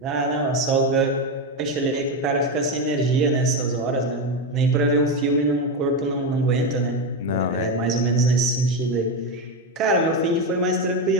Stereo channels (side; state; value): both; normal; correlation 0.11